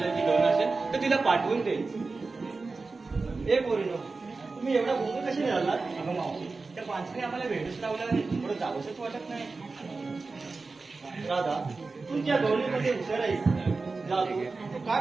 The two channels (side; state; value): left; quieter; 4.0 dB